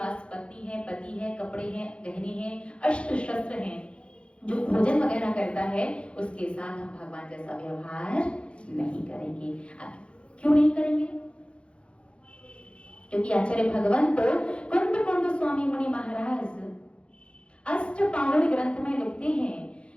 पत्नी है, पति है, कपड़े हैं, गहने हैं, अस्त्र शस्त्र हैं, जो भोजन वगैरह करता है, उसके साथ हम भगवान जैसा व्यवहार नहीं करेंगे। क्यों नहीं करेंगे? क्योंकि आचार्य भगवंत कुंद स्वामी मुनि महाराज अष्टपावड़ ग्रंथ में लिखते हैं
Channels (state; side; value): late; right; 0.058 ms